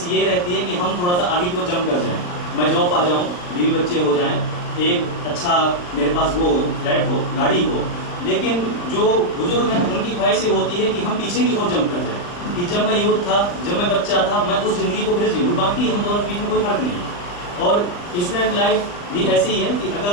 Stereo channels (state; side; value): late; right; 39 ms